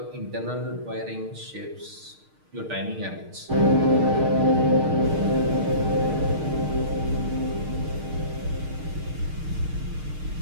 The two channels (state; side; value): late; left; 6.5 ms